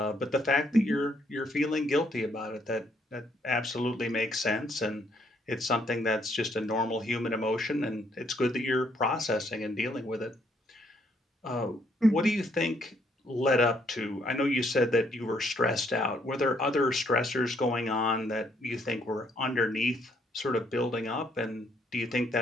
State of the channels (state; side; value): normal; both; correlation 0.69